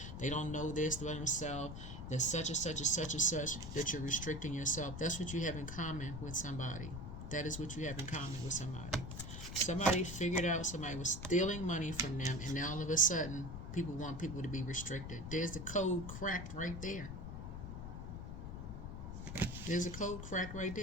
They don't know this about themselves. There's such and such and such and such that you're restricting yourself. That's what you have in common with somebody. That is what you have in common with somebody. Somebody figured out somebody was stealing money from them, and now all of a sudden people want people to be restricted. There's the code cracked right there. There's a code crack right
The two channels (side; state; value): left; noise; rumble, 7 dB below the sound